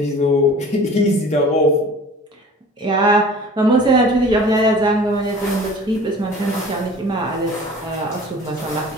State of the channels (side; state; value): both; normal; correlation 0.44